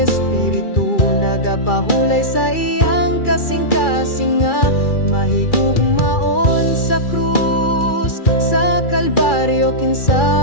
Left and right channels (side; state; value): right; late; 2.3 ms